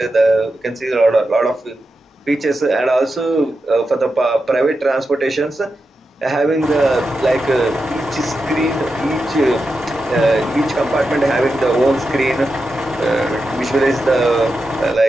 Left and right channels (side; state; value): both; normal; correlation 0.89